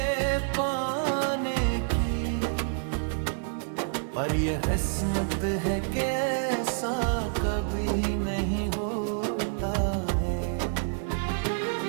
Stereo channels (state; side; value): silent; left; 59 dB below the other